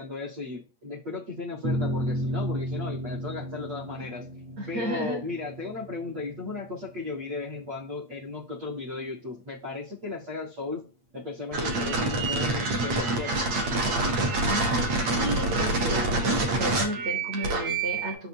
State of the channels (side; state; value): left; late; 8.8 ms